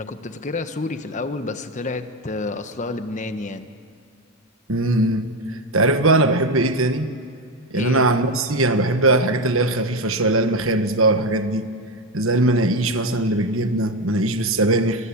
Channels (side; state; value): both; normal; correlation 0.13